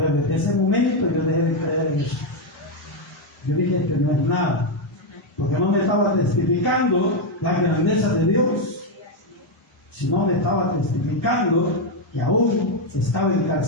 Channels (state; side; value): normal; both; correlation 0.04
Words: desde ese momento yo dejé de creer en eso. Yo dije que no es nada. Porque no me estaba testificando la grandeza de Dios, sino me estaba testificando que aún estaba